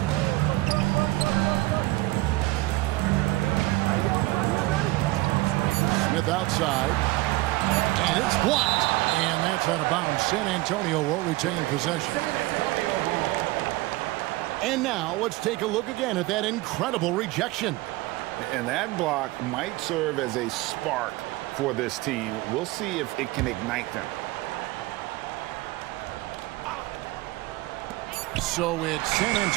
Smith outside. And it's blocked. And that's out of bounds. San Antonio will retain possession. And now let's take a look again at that incredible rejection. And that block might serve as a spark for this team. We'll see if it can ignite them. So it's San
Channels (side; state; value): left; quieter; 19.9 dB